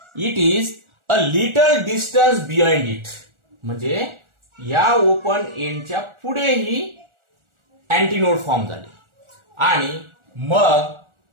it is a little distance behind it. म्हणजे या open एंडच्या पुढे ही antinode form झाली आणि मग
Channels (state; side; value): late; left; 1.4 ms